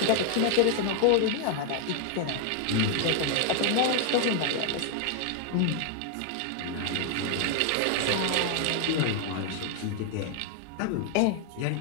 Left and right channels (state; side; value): different; both; correlation 0.00